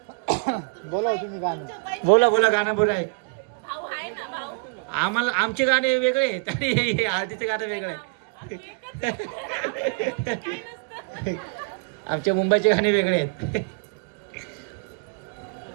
बोला बोला, गाणं बोला एक. आम्हाला आमचे गाणे वेगळे आहेत आणि हळदीचे गाणं वेगळे आहे. आमचे मुंबईचे गाणे वेगळे आहेत.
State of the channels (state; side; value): quieter; left; 33.2 dB